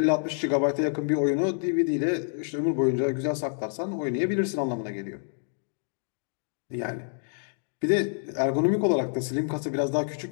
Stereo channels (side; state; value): right; silent; 60 dB below the other